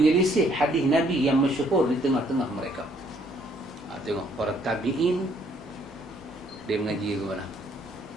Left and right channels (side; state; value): both; normal; correlation 0.65